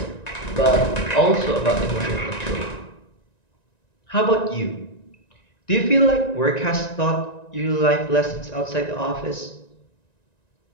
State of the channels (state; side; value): late; right; 1.9 ms